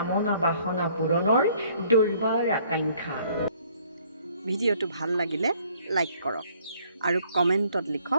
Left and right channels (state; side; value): inverted; both; correlation -0.61